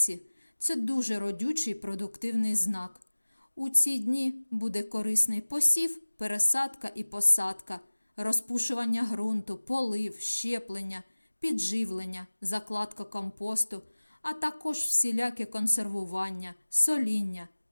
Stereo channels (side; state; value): both; inverted; correlation -1.00